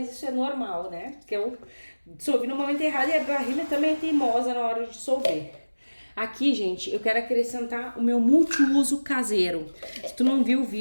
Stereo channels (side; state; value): both; inverted; correlation -1.00